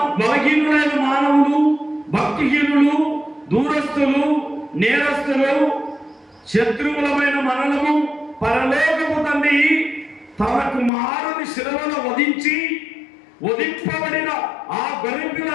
బలహీనులైన మానవులు, భక్తిహీనులు, దూరస్తులు, నేరస్తులు, శత్రువులమైన మనలను పరలోకపు తండ్రి తన కుమారుని శిలువలో వధింపబడిన ఆ గొర్రెపిల్ల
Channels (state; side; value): drops out; right; at 10.9 s